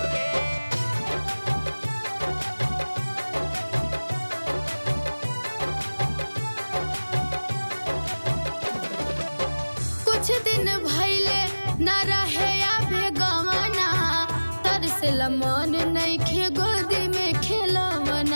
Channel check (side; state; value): both; inverted; correlation -1.00